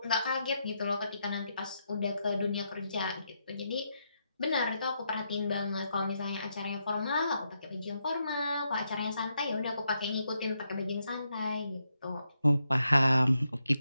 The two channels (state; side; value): inverted; both; correlation -0.81